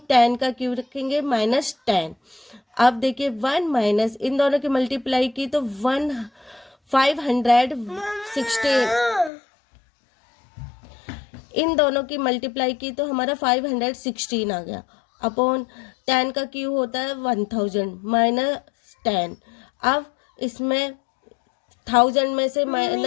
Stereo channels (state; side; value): drops out; right; at 9.3 s